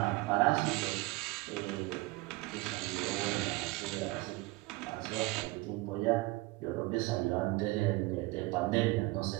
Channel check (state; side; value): quieter; left; 21.4 dB